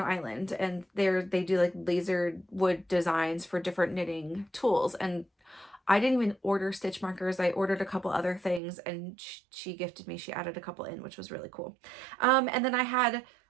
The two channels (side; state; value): left; drops out; at 8.6 s